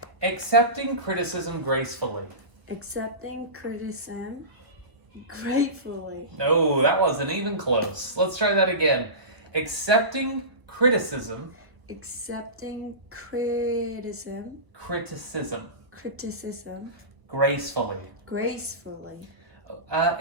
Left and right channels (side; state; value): left; late; 1.0 ms